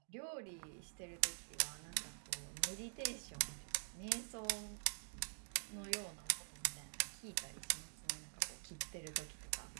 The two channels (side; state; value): left; silent; digital silence